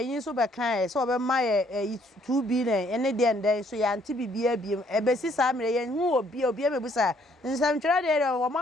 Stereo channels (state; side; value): normal; both; correlation 0.65